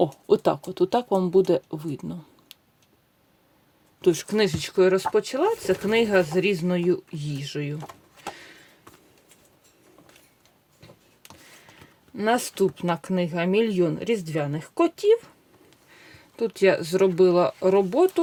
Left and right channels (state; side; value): identical; both; correlation 1.00